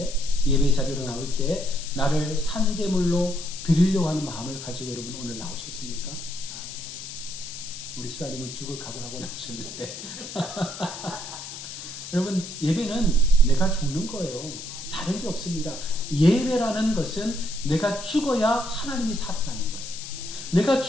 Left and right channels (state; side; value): noise; left; hiss, 10 dB below the sound